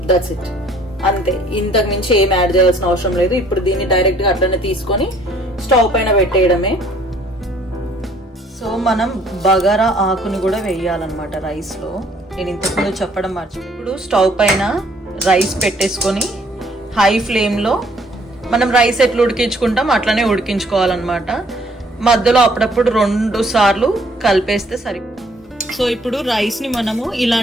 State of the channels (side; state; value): both; normal; correlation 0.61